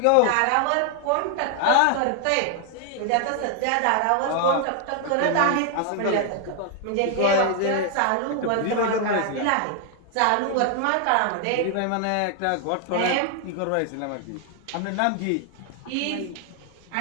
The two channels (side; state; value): both; different; correlation 0.00